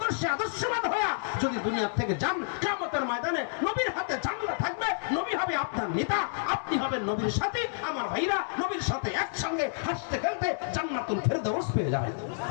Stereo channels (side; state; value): right; silent; digital silence